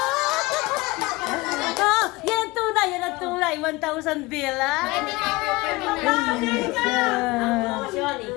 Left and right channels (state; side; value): quieter; right; 21.9 dB